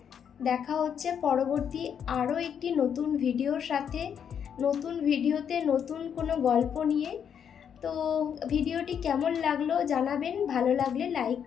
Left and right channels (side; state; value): right; quieter; 8.0 dB